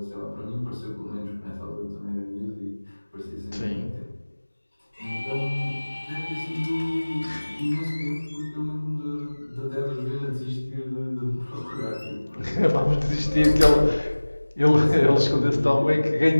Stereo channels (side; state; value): both; inverted; correlation -1.00